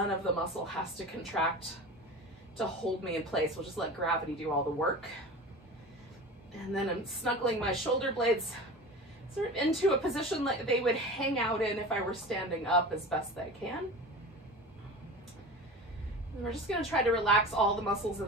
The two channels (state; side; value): normal; both; correlation 0.33